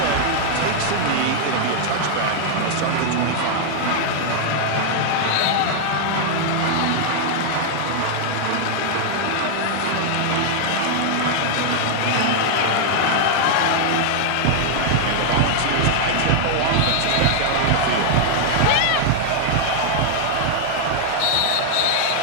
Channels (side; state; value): both; different; correlation 0.00